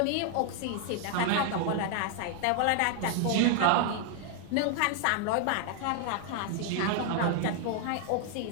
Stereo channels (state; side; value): different; both; correlation 0.00